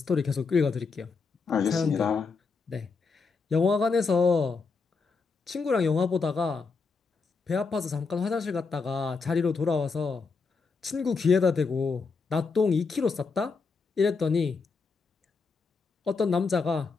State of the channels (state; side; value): quieter; right; 4.6 dB